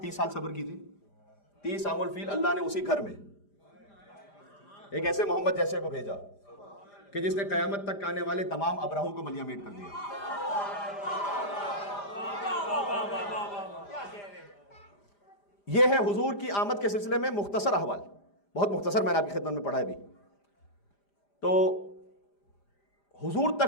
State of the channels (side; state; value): right; late; 5.0 ms